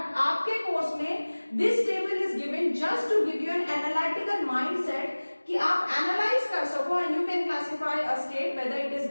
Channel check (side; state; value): both; inverted; correlation -1.00